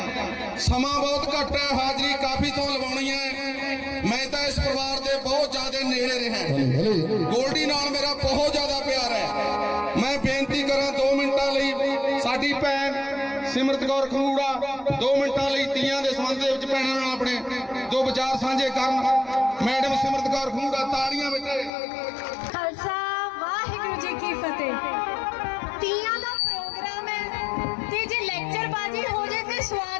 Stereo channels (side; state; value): right; drops out; at 21.7 s